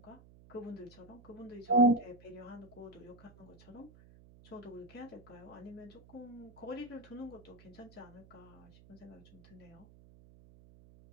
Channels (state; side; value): noise; right; hum, 22 dB below the sound